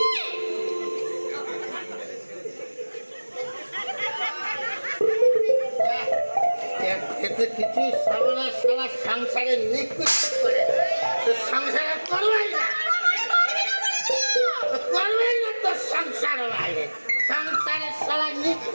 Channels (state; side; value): inverted; both; correlation -1.00